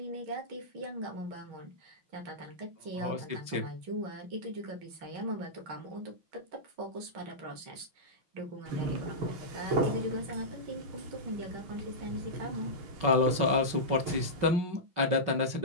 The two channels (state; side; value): late; left; 5.5 ms